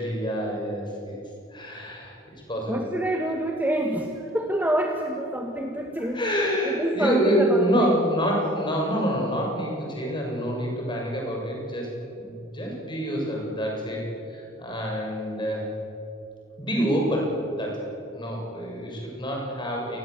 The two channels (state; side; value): normal; both; correlation 0.52